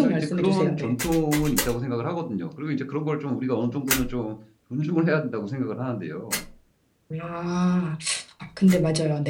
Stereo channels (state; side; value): identical; both; correlation 1.00